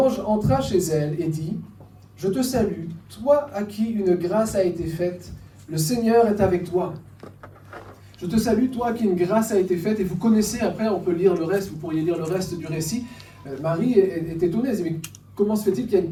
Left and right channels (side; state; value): both; identical; correlation 1.00